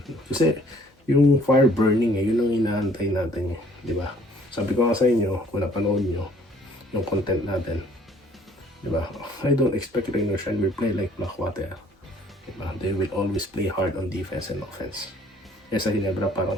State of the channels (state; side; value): normal; both; correlation 0.59